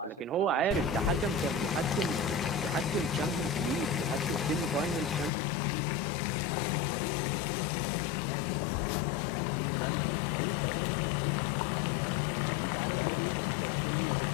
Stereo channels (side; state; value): right; drops out; at 5.3 s